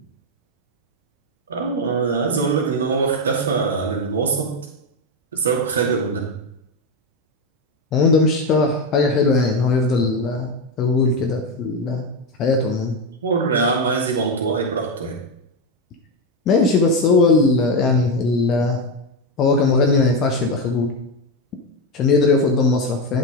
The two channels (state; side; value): normal; both; correlation 0.09